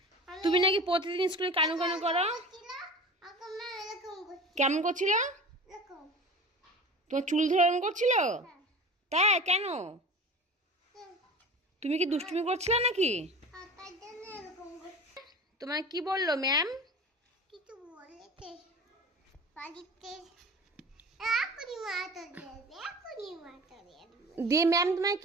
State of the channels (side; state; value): both; normal; correlation 0.36